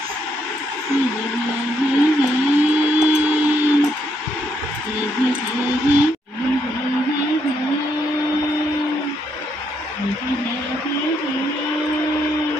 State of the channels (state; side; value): normal; both; correlation 0.75